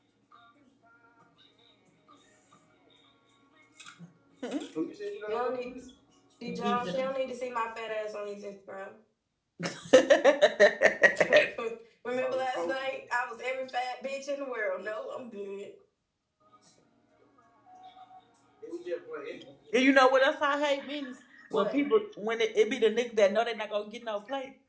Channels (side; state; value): both; identical; correlation 1.00